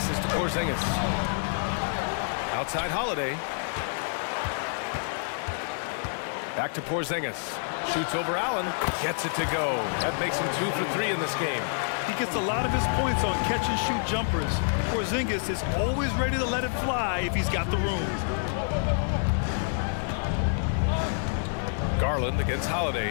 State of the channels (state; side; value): silent; right; digital silence